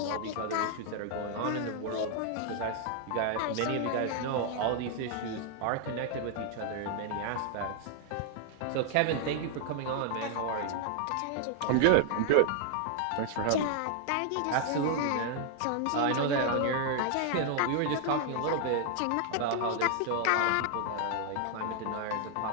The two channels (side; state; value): both; different; correlation 0.00